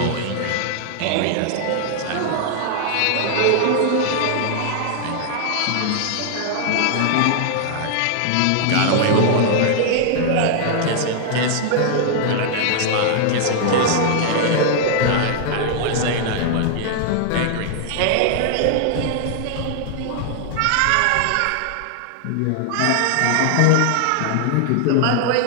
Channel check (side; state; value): both; different; correlation 0.00